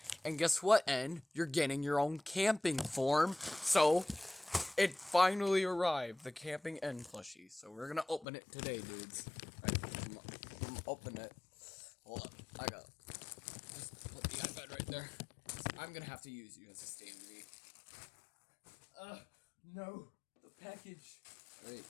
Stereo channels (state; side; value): drops out; right; at 8.2 s